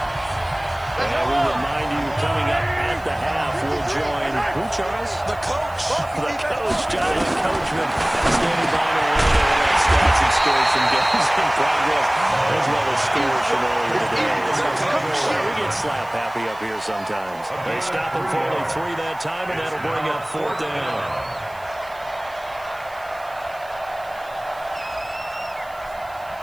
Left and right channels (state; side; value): noise; right; hiss, 26 dB below the sound